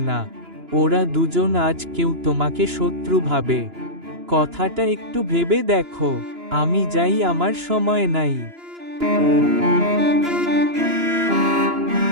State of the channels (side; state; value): left; late; 2.9 ms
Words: না। ওরা দুজন আজ কেউ তোমাকে শত্রু ভাবে। কথাটা একটু ভেবে দেখো। আমি যাই, আমার সময় নাই।